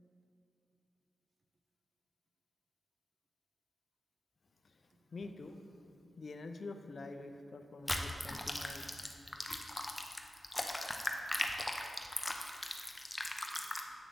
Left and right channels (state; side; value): normal; both; correlation 0.96